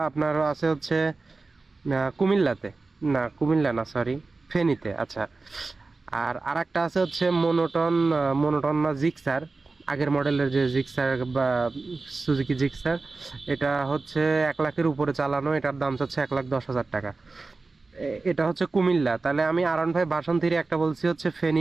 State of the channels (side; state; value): left; quieter; 3.7 dB